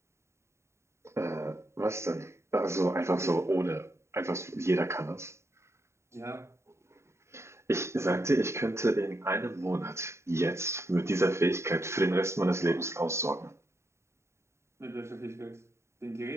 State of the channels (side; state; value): left; late; 0.13 ms